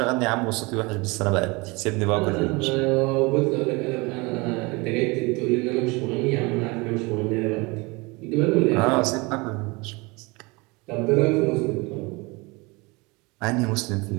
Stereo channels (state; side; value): quieter; left; 26.0 dB